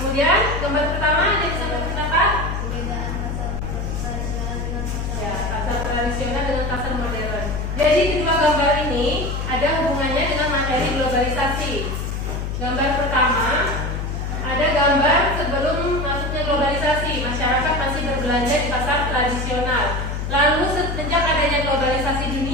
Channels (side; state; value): left; noise; hum, 3 dB below the sound